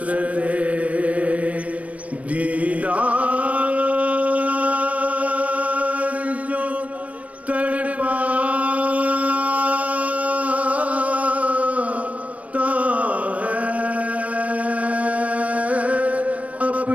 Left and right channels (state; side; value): late; left; 0.068 ms